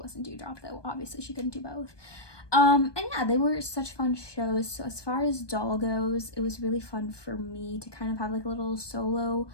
Dewdrop, though obviously she couldn't do both. And yeah, they were such fun shows. So as far as doll goes, it was really fun for me to kind of have like a little solo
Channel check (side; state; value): right; late; 1.2 ms